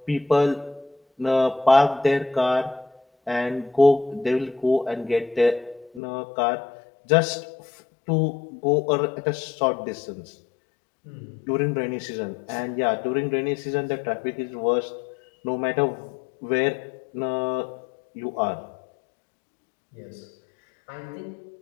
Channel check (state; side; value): drops out; right; at 6.0 s